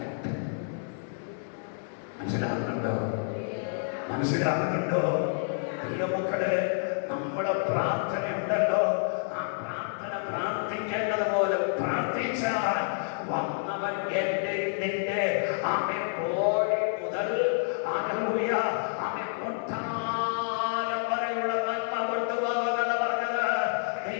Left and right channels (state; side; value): silent; right; 59 dB below the other